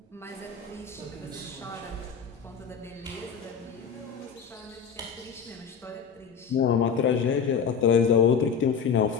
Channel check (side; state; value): right; quieter; 6.6 dB